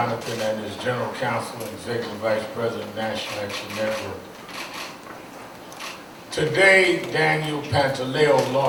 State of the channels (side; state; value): both; identical; correlation 1.00